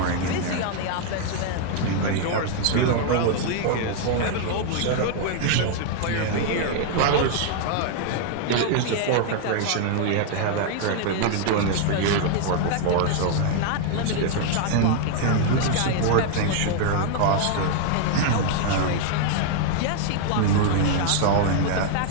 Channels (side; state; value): both; different; correlation 0.00